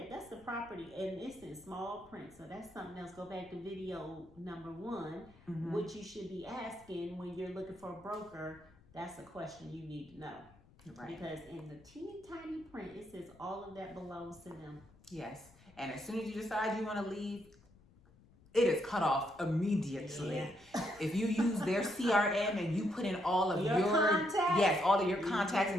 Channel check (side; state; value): left; noise; rumble, 26 dB below the sound